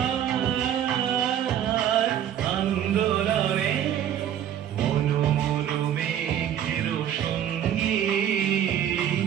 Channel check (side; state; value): left; quieter; 10.2 dB